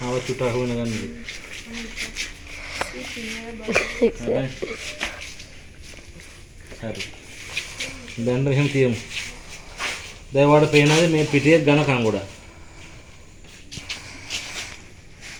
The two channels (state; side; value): identical; both; correlation 1.00